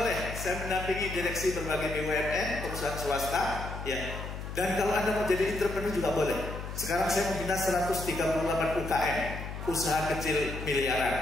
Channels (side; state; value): left; noise; hum, 8 dB below the sound